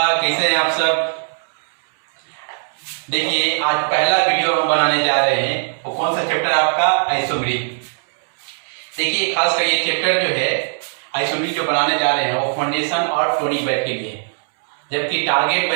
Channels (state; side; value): silent; left; 66 dB below the other